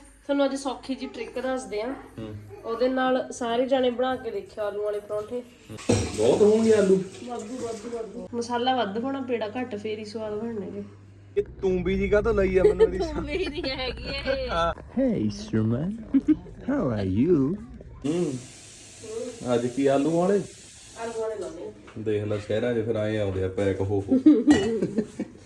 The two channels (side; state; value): both; identical; correlation 1.00